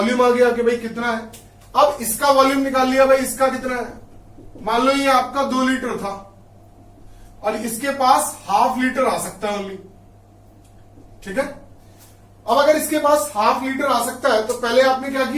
आ गया कि भाई कितना है। अब इसका वॉल्यूम निकाल लिया भाई, इसका कितना है, मान लो ये आपका 2 लीटर था और इसके पास ½ लीटर आ सकता है ओनली, ठीक है। अब अगर इसके पास ½ लीटर आ सकता है तो पहले आपने क्या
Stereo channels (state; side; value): identical; both; correlation 1.00